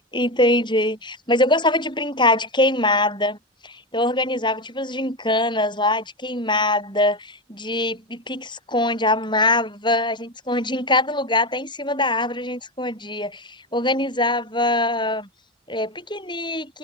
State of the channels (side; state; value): both; normal; correlation 0.15